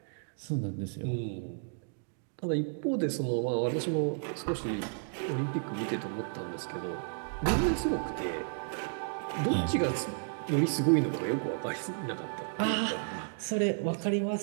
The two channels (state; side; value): silent; left; digital silence